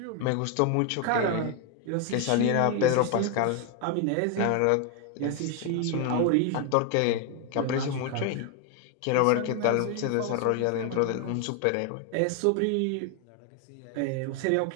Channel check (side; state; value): both; different; correlation 0.01